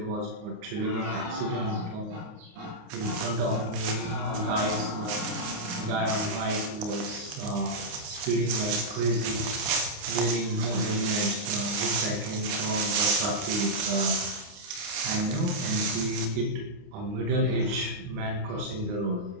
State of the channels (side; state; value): left; late; 29 ms